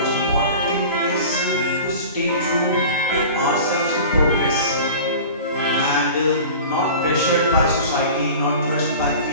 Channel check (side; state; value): both; inverted; correlation -0.38